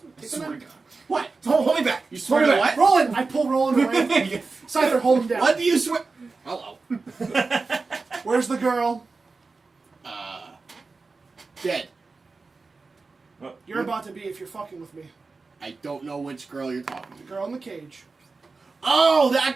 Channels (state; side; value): quieter; left; 4.0 dB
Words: me. I Take the swear to knife. God. What? Don't hold me back. You swear Hold to it. what? Roland. I pull Roland away. Scyther, hold him down. What do you swear? Hello. Where's the girl? Dead. You're about to be if you're fucking with me. I don't know which girl you're talking The to. girl in the cage. Oh,